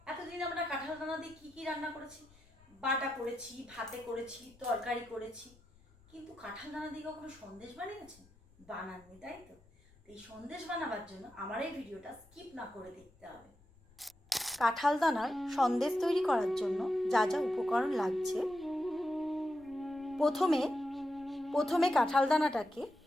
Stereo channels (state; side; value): noise; left; rumble, 27 dB below the sound